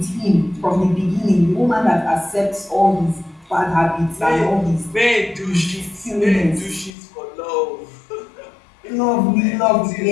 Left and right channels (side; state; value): right; drops out; at 6.9 s